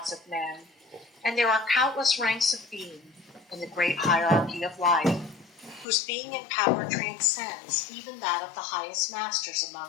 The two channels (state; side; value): drops out; right; at 5.9 s